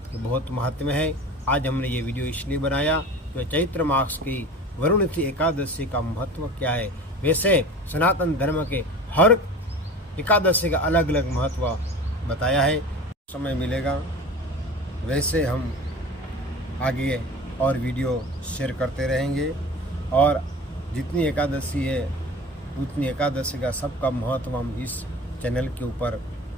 बहुत महत्व है। आज हमने ये वीडियो इसलिए बनाया कि चैत्र मास की वरुणिति एकादशी का महत्व क्या है। वैसे सनातन धर्म के हर एकादशी का अलग अलग महत्व बताया है। समय मिलेगा वैसे हम आगे और वीडियो शेयर करते रहेंगे। और जितनी एकादशी है उतनी एकादशी का सबका महत्व हम इस चैनल के ऊपर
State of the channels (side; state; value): both; normal; correlation 0.37